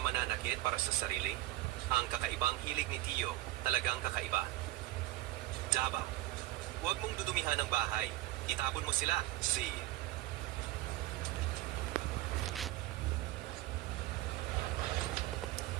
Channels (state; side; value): quieter; left; 17.3 dB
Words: mananakit para sa sarili. Ang kakaibang hilig ni Tio, talagang kakaiba. Java, huwag mong dudumihan ng bahay. Itapon mo sila.